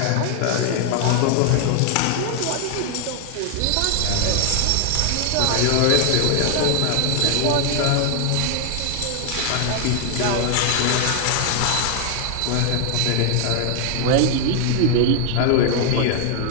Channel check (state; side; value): different; both; correlation 0.00